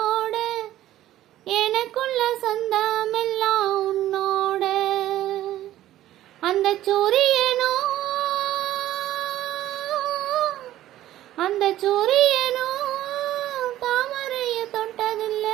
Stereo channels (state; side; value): quieter; left; 13.8 dB